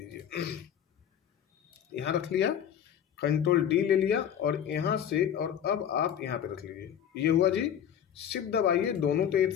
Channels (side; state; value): right; quieter; 9.3 dB